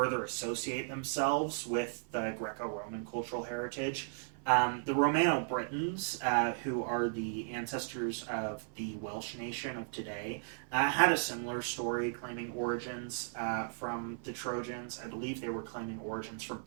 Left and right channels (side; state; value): left; silent; 54 dB below the other